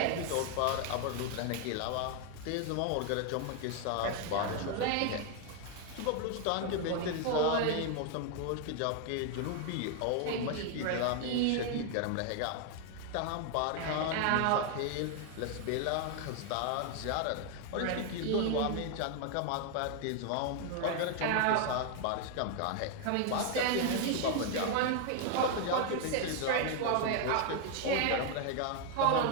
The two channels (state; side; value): different; both; correlation 0.01